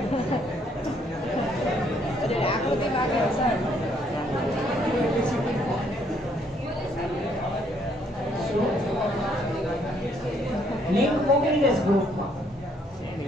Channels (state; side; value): normal; both; correlation 0.68